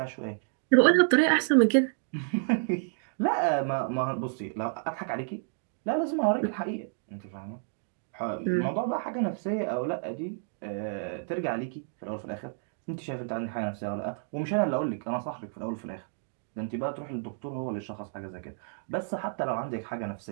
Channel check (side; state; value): left; silent; digital silence